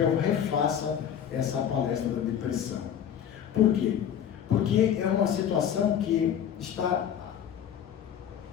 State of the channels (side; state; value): right; quieter; 9.1 dB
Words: eu refaça essa palestra da depressão. Por quê? Porque é uma situação que está